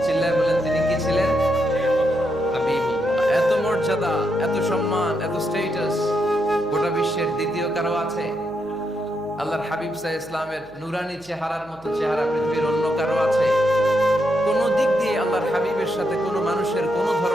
দ্বিতীয় কারো আছে? আল্লাহর হাবিব সাল্লাল্লাহু আলাইহি ইসলামের নুরানি চেহারার মতো চেহারা পৃথিবীর অন্য কারো আছে? কোন দিক দিয়ে আল্লাহর হাবিবের সাথে কোনো মানুষের কোনো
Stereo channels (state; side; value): noise; right; hum, 25 dB below the sound